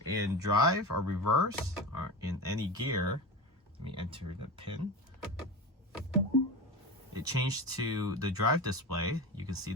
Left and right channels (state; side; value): normal; both; correlation 0.27